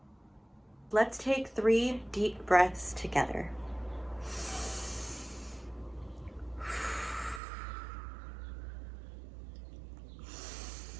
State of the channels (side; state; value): left; drops out; at 7.4 s